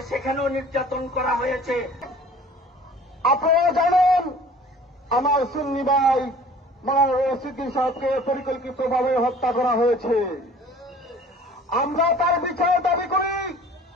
সেখানেও নির্যাতন করা হয়েছে। আপনারা জানেন আমার সুন্নি ভাই মাওলানা রইস উদ্দিন সাহেবকে পরিকল্পিতভাবে হত্যা করা হয়েছে। আমরা তার বিচার দাবি করি,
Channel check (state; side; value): normal; both; correlation 0.48